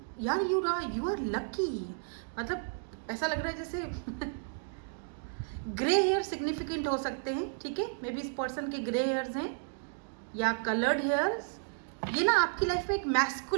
यार यू आर लकी, मतलब ऐसा लग रहा है जैसे ग्रे हेयर सिग्निफिकेंट हो सकते हैं, ठीक है, मे बी इस पर्सन के ग्रे हेयर्स हैं या कलर्ड हेयर्स। ये ना आपकी लाइफ में एक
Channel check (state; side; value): silent; left; digital silence